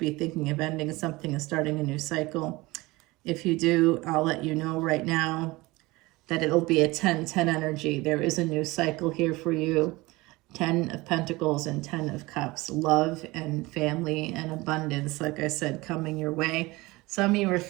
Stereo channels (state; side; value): quieter; left; 21.6 dB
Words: thinking of ending something and starting a new cycle. If you do, I'll let you know right now that it'll be a 10-10 energy. There is a new cycle here for you. 10 of Pentacles and 10 of Cups. Love and family and abundance, like I said, coming your way. Some of you are